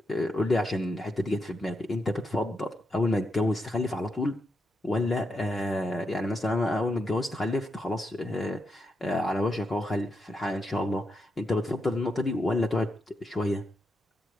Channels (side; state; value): both; normal; correlation 0.84